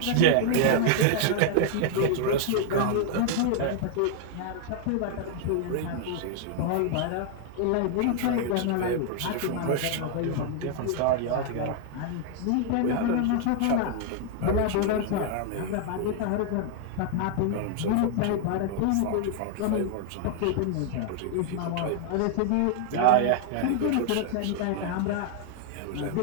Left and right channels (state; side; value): different; both; correlation 0.00